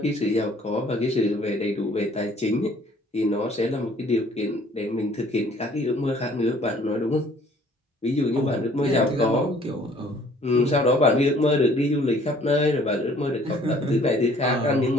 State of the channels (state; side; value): normal; both; correlation 0.57